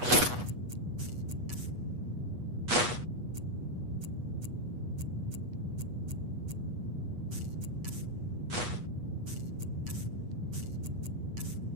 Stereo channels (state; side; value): late; left; 8.2 ms